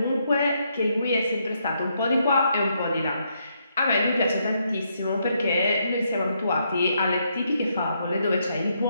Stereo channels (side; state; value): both; inverted; correlation -0.76